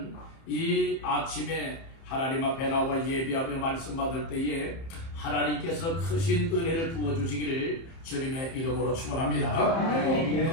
이 아침에 하나님 앞에 나와 예배하며 말씀 받을 때에 하나님께서 크신 은혜를 부어주시기를 주님의 이름으로 축원합니다.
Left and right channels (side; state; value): right; late; 30 ms